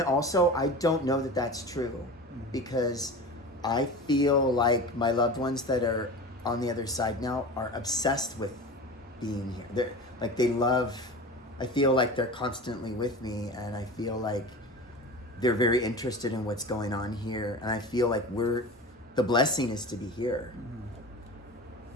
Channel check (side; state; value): both; normal; correlation 0.32